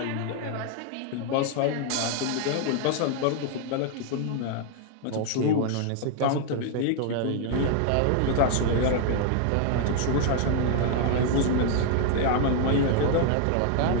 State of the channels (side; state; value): both; different; correlation 0.00